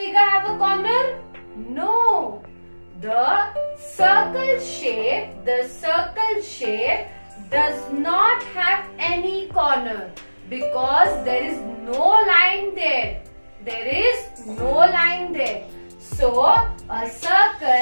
have a corner? No. The circle shape does not have any corner because there is no line there. There is no line there. So a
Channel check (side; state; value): both; inverted; correlation -1.00